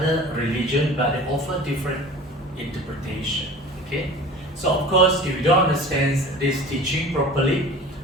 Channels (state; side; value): normal; both; correlation 0.40